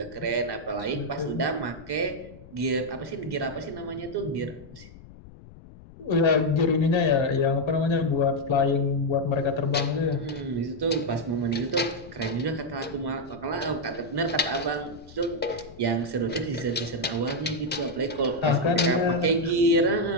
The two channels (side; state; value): left; noise; rumble, 19 dB below the sound